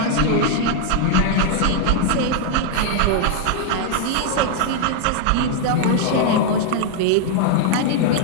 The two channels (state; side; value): different; both; correlation 0.00